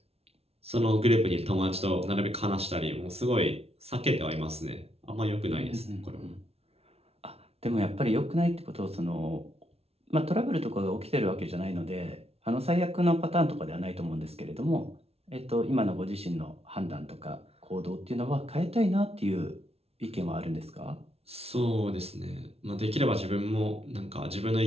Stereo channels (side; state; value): left; late; 0.30 ms